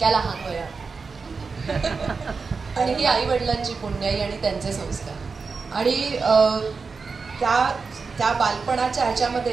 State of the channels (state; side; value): quieter; left; 4.8 dB